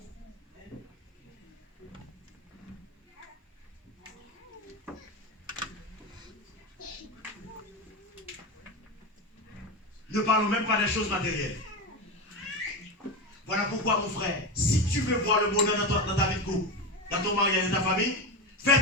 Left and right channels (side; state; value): both; normal; correlation 0.19